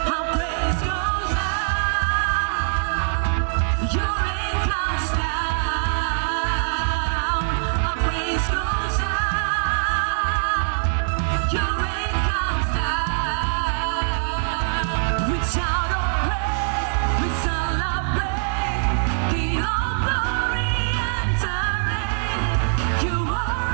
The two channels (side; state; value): left; silent; digital silence